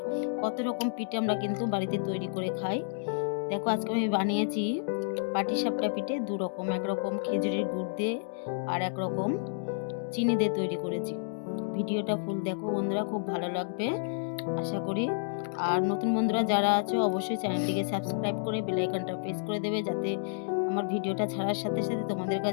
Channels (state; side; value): silent; right; digital silence